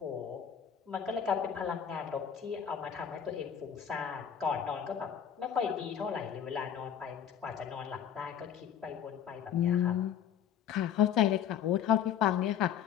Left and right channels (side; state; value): right; quieter; 8.8 dB